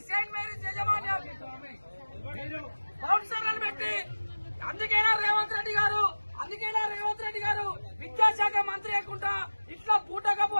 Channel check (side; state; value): both; inverted; correlation -1.00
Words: అందుకేనా రేవంత్ రెడ్డి గారు విద్యాశాఖ మంత్రి లేకుండా ఇట్లా పూటకపు